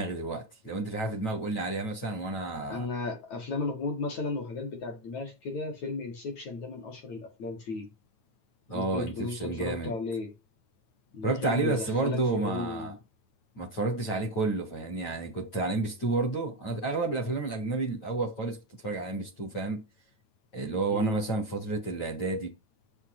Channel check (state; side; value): late; right; 9.1 ms